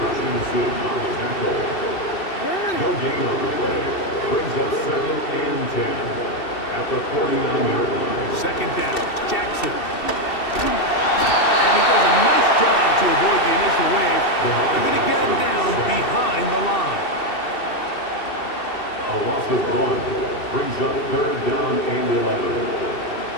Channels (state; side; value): late; right; 2.7 ms